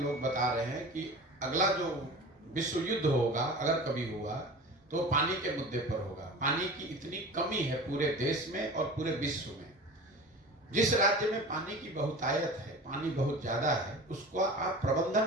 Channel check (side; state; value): both; normal; correlation 0.36